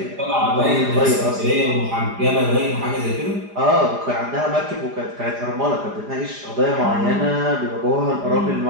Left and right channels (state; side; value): late; left; 4.9 ms